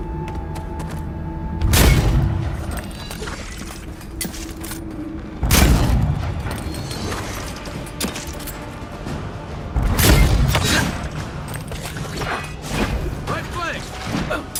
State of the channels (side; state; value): both; identical; correlation 1.00